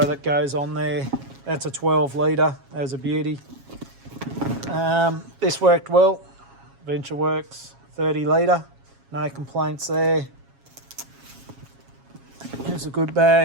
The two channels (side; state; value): left; late; 7.3 ms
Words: that goes on there. That's a 12 litre. That was a beauty. This worked well. Venture works. 30 litre. No complaints there. It's a good